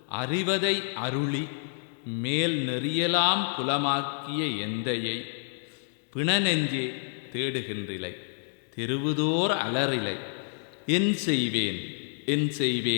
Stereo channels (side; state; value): right; silent; digital silence